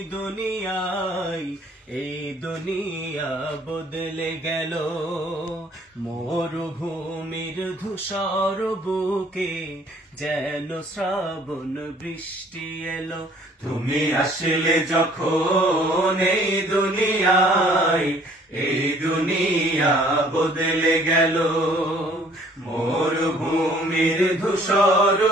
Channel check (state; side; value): normal; both; correlation 0.58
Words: দুনিয়া বদলে গেল, মরুভূমির ধূসর বুকে যেন শ্রাবণ বৃষ্টি এলো। তুমি আসলে যখন এই দুনিয়া বদলে গেল, মরুভূমির ধূসর